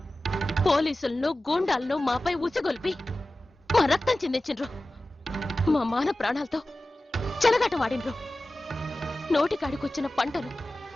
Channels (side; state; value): both; normal; correlation 0.96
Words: పోలీసులను గూండాలను మాపై ఉసిగొల్పి మా రక్తం చిందించిండ్రు. మా మాన ప్రాణాలతో చెలగాట వాడిండ్రు. నోటికాడికొచ్చిన పంటను